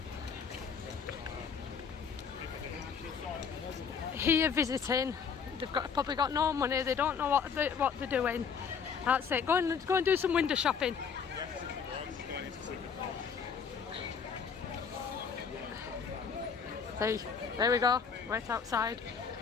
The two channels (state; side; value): quieter; right; 6.4 dB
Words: Here visiting, they've probably got no money. They don't know what they're doing. That's it. Go and do some window shopping. See, there we go. Right outside.